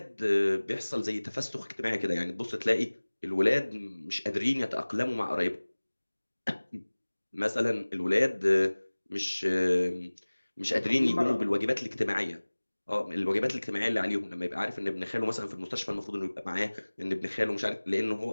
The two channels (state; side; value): inverted; both; correlation -1.00